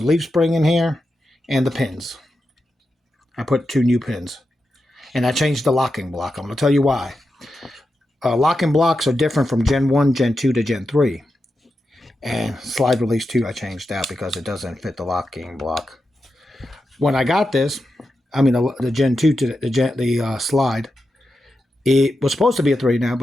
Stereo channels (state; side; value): normal; both; correlation 0.89